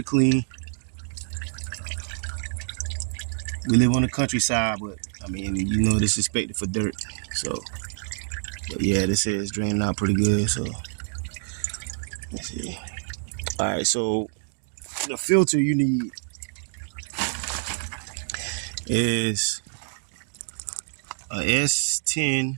clean. We live on the countryside, but I mean, this is expected for dirt. So, but yeah, this is draining out pretty good. So let's see. All right, so the filter you need is a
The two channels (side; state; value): left; silent; digital silence